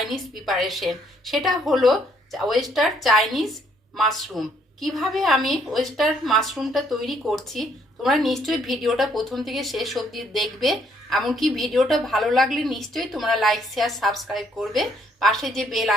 প্রিপারেশন। সেটা হলো ওয়েস্টার চাইনিজ মাশরুম। কিভাবে আমি ওয়েস্টার মাশরুমটা তৈরি করছি তোমরা নিশ্চয়ই ভিডিওটা প্রথম থেকে শেষ অবধি দেখবে। এমনকি ভিডিওটা ভালো লাগলে নিশ্চয়ই তোমরা লাইক শেয়ার সাবস্ক্রাইব করবে। পাশে যে বেল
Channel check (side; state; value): both; normal; correlation 0.68